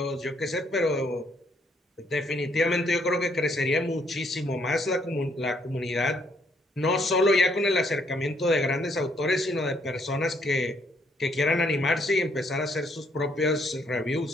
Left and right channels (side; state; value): both; normal; correlation 0.69